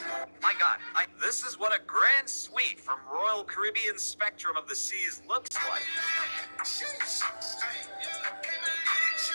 My God, this is what a grand suite from Royal Caribbean Spectrum of the Seas looks like.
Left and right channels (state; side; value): inverted; both; correlation -1.00